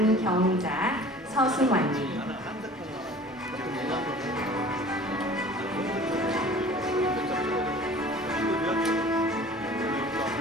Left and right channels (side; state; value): both; normal; correlation 0.45